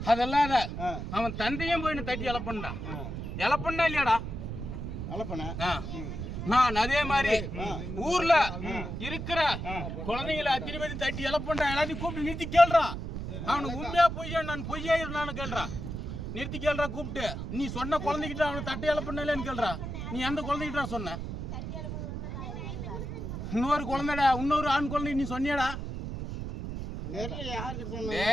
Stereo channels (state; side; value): noise; right; rumble, 6 dB below the sound